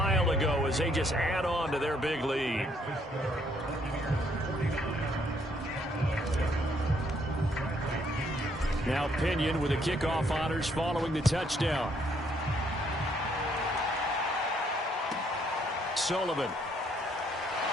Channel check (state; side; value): normal; both; correlation 0.69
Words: ago as they just add on to their big lead. Now Pinion with the kickoff honors following the touchdown. Sullivan.